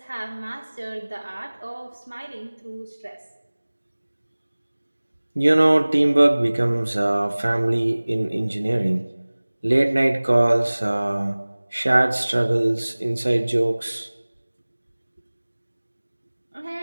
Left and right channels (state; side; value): inverted; both; correlation -1.00